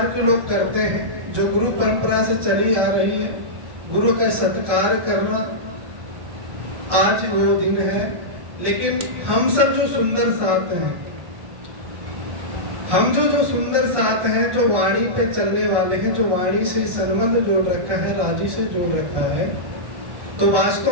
के लोग करते हैं, जो गुरु परंपरा से चली आ रही है, गुरु का सत्कार करना, आज वो दिन है। लेकिन हम सब जो सुंदर साथ हैं, हम जो सुंदर साथ हैं, जो वाणी पे चलने वाले हैं, जो वाणी से संबंध जोड़ रखा है, राजी से जोड़ रखा है, तो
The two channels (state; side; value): late; left; 1.1 ms